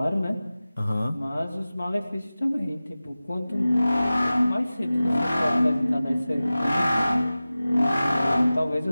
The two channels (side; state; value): both; inverted; correlation -0.96